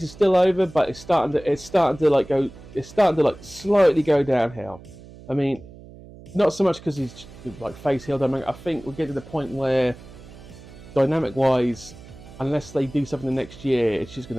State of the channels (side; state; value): right; noise; hum, 19 dB below the sound